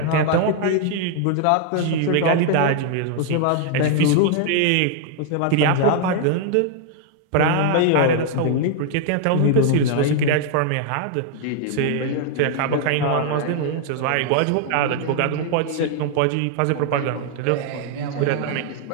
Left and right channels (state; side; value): different; both; correlation 0.00